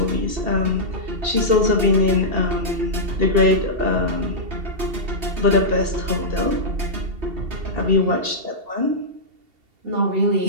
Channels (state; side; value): late; left; 2.7 ms